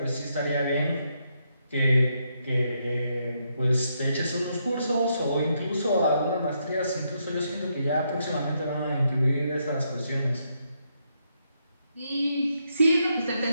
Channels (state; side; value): inverted; both; correlation -0.79